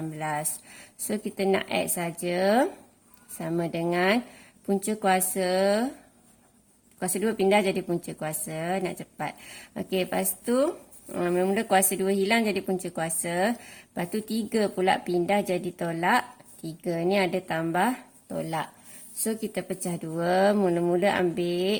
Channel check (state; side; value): identical; both; correlation 1.00